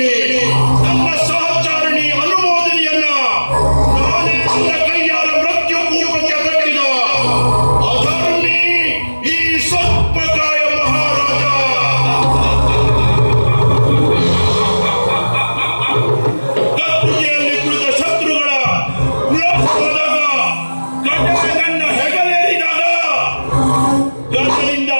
ನನ್ನ ಸಹಚಾರಿಣಿ ಅನುಮೋದನೆಯನ್ನ ನಾನೇ ನನ್ನ ಕೈಯಾರ ಮೃತ್ಯು ಕೂಪಕ್ಕೆ ಕಟ್ಟಿದ ಅಧರ್ಮಿ ಈ ಸರ್ಪಕಾಯ ಮಹಾರಾಜ. ಕತ್ತುಗೆಯಲ್ಲಿ ಕುಳಿತ ಶತ್ರುಗಳ ವಿಳಾಸವಾದಾಗ, ಗಡ್ಡೆ ನನ್ನ ಹೆಗಲೇರಿದಾಗ, ಗದರಿಂದ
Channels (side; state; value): both; inverted; correlation -1.00